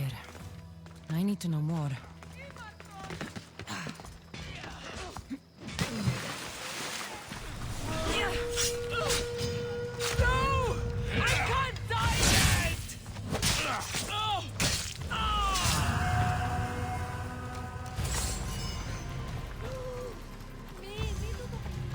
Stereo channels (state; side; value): identical; both; correlation 1.00